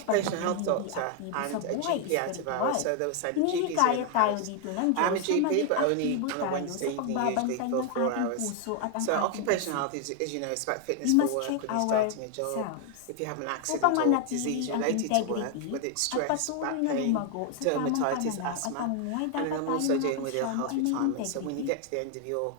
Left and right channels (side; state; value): both; different; correlation 0.01